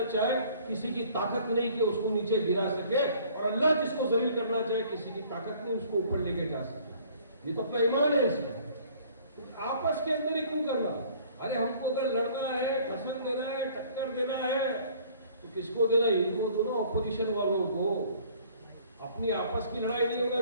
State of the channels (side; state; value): both; inverted; correlation -0.55